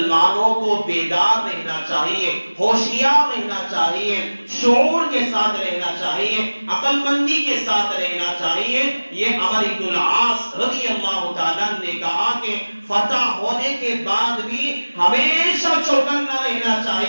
کو بیدار رہنا چاہیے، ہوشیار رہنا چاہیے، شعور کے ساتھ رہنا چاہیے، عقل مندی کے ساتھ رہنا چاہیے۔ یہ عمر بن العاص رضی اللہ تعالیٰ نے کہا کہ فتح ہونے کے بعد بھی ہمیشہ چوکنا رہنا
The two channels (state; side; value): inverted; both; correlation -1.00